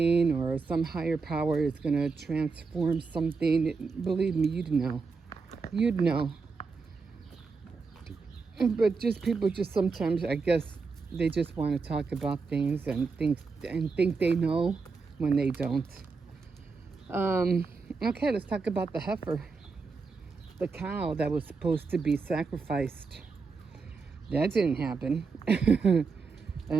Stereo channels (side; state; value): left; quieter; 4.6 dB